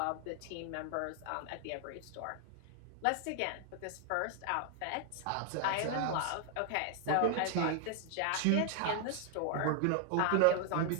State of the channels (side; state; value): both; different; correlation 0.00